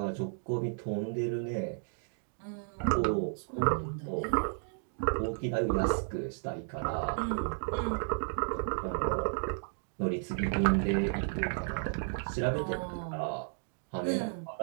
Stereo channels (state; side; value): silent; left; 56 dB below the other